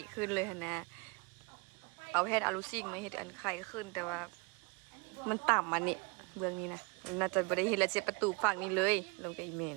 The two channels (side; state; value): left; quieter; 29.8 dB